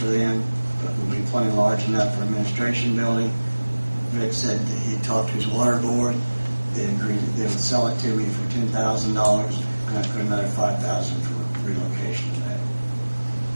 them, but will be plenty large enough for administration building. Rick said that he talked to his water board. They agreed that they would sell it to me for $10,000, and I put another $5,000 for relocation of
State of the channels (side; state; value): both; inverted; correlation -1.00